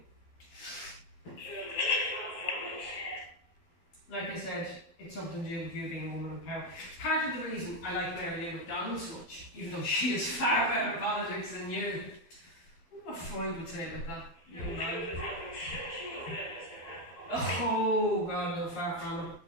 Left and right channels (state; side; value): late; right; 12 ms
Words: Like I said, it's something to do with you being a woman in power. Part of the reason I like Mary Lou McDonald so much, even though she is far better at politics than you. I wonder what Freud would say about that. Young man. Oh, God, no, far from it.